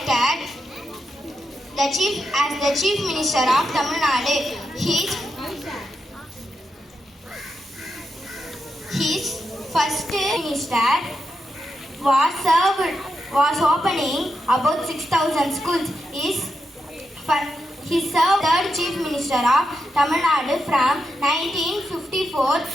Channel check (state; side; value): normal; both; correlation 0.86